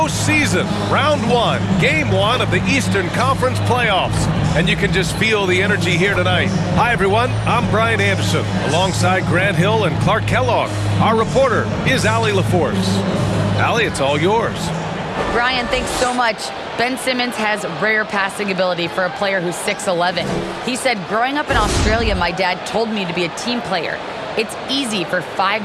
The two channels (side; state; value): both; identical; correlation 1.00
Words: round one, game one of the Eastern Conference playoffs. And you can just feel the energy here tonight. Hi, everyone. I'm Brian Anderson, alongside Grant Hill and Clark Kellogg. Our reporter is Allie LaForce. Allie, it's all yours. Brian, thanks so much. Ben Simmons has rare passing ability for a player who's 6'11". He said, growing up in Australia, my dad told me to be a team player. It's easy for 5